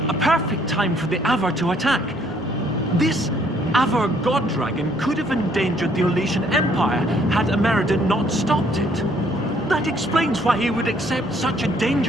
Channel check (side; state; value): both; normal; correlation 0.64